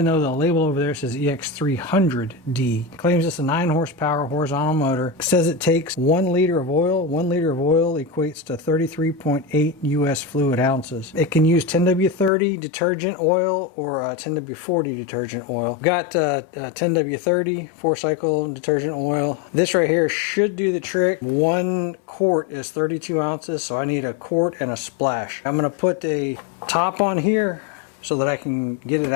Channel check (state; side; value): drops out; right; at 12.3 s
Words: though the label over there says EX300D. It claims it's a 9 horsepower horizontal motor. It says it takes 1 liter of oil. 1 liter of oil equates to 33.8 US fluid ounces. It can use 10W30 detergent oil or 10W40 detergent oil. I've got 10W30 4-cycle detergent oil. This right here should do the trick. 1 quart is 32 ounces, so I need a quart and a splash. I'm going to put a top on here so that I can get it